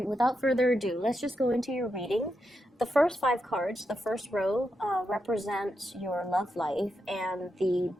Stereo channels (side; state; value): both; normal; correlation 0.85